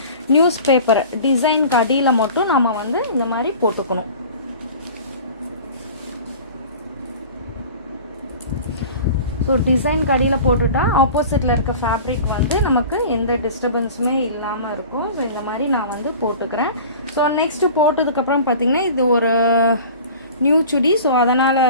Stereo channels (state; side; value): inverted; both; correlation -0.40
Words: நியூஸ் பேப்பர் டிசைனுக்கு அடியில் மட்டும் நம்ம வந்து இந்த மாதிரி போட்டுக்கணும். ஸோ டிசைனுக்கு அடியில் போட்டுட்டா ஆப்போசிட்டில் இருக்க ஃபேப்ரிக் வந்து நமக்கு எந்த டிஸ்டர்பன்ஸுமே இல்லாமல் இருக்கும். ஸோ இந்த மாதிரி நான் வந்து போட்டுக்கிறேன். ஸோ நெக்ஸ்ட்டு போட்டதுக்கப்புறம் பார்த்திங்கன்னா இது ஒரு நியூ சுடி, ஸோ அதனால்